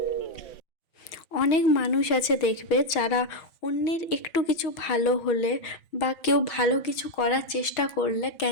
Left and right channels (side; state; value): right; late; 6.3 ms